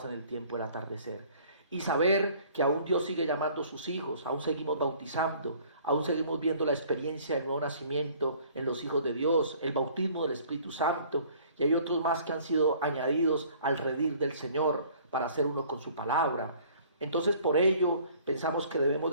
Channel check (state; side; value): inverted; both; correlation -0.54